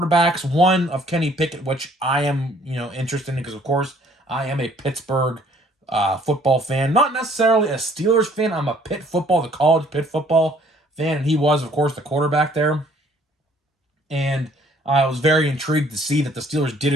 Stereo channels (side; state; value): both; normal; correlation 0.60